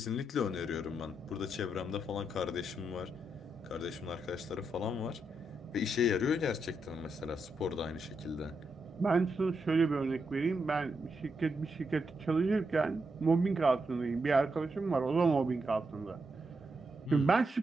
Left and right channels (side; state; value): both; normal; correlation 0.83